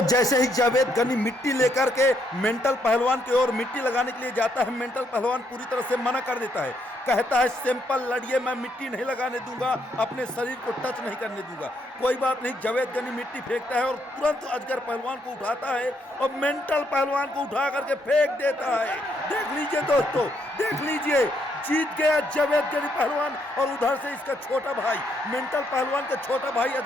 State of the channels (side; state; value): both; normal; correlation 0.74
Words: जैसे ही जावेद गनी मिट्टी लेकर के मेंटल पहलवान की ओर मिट्टी लगाने के लिए जाता है, मेंटल पहलवान पूरी तरह से मना कर देता है। कहता है सिंपल लड़िए, मैं मिट्टी नहीं लगाने दूंगा, अपने शरीर को टच नहीं करने दूंगा। कोई बात नहीं, जावेद गनी मिट्टी फेंकता है और तुरंत अजगर पहलवान को उठाता है और मेंटल पहलवान को उठा करके फेंक देता है। देख लीजिए दोस्तों, देख लीजिए, जीत गया जावेद गनी पहलवान। और उधर से इसका छोटा भाई, मेंटल पहलवान का छोटा भाई